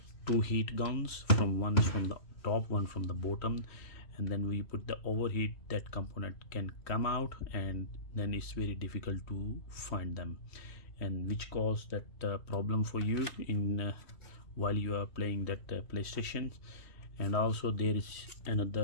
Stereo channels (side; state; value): right; late; 3.1 ms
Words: two heat guns, from one from the top, one from the bottom, and then we put the overheat, that component can come out, and then it's very difficult to find them, and which cause that problem for you in while you are playing that PlayStation. And also there is